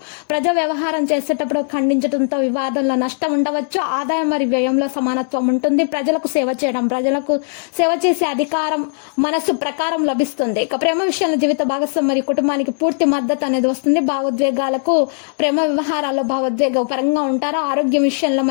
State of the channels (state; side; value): silent; right; digital silence